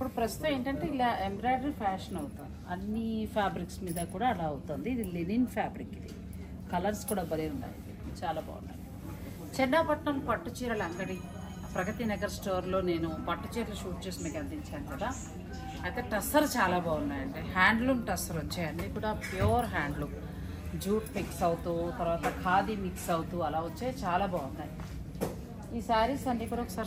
ప్రస్తుతం ఏంటంటే ఇలా ఎంబ్రాయిడరీ ఫ్యాషన్ అవుతుంది, అన్ని ఫ్యాబ్రిక్స్ మీద కూడా అలా అవుతుంది. ఇది లినిన్ ఫ్యాబ్రిక్, ఇది కలర్స్ కూడా భలే ఉన్నాయి, చాలా బాగున్నాయి. చెన్నాపట్నం పట్టు చీరల అంగడి ప్రగతి నగర్ స్టోర్లో నేను పట్టు చీరలు షూట్ చేసి మీకు అందించాను కదా. అయితే టస్సర్ చాలా బాగున్నాయండి, హ్యాండ్లూమ్ టస్సర్ వచ్చాయి, అన్నీ కూడా ప్యూర్ హ్యాండ్లూమ్, జూట్ మిక్స్ అవుతూ తర్వాత ఖాదీ మిక్స్ అవుతూ అలా వచ్చాయి, చాలా బాగున్నాయి. ఈ శారీస్ అన్నీ కూడా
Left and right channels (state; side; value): identical; both; correlation 1.00